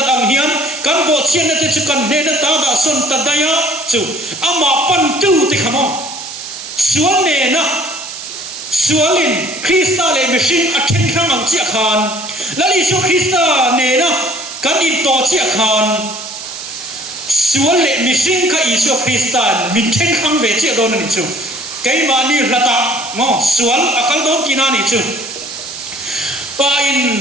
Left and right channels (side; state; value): right; noise; hiss, 10 dB below the sound